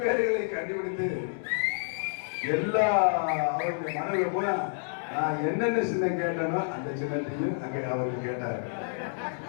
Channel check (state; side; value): silent; right; digital silence